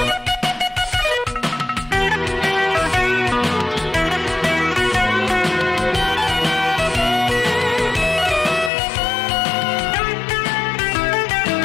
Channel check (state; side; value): drops out; right; at 8.7 s